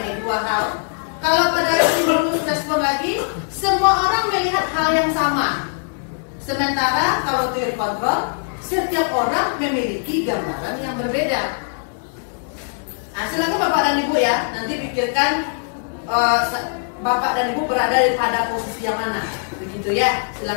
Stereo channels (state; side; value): silent; right; digital silence